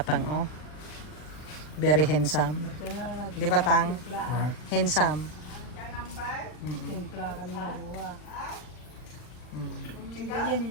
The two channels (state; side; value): late; right; 40 ms